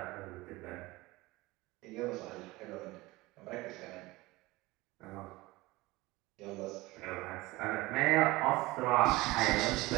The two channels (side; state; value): left; quieter; 20.8 dB